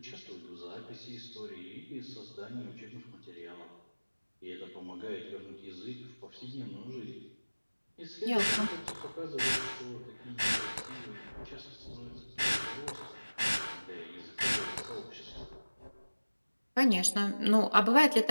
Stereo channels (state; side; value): inverted; both; correlation -1.00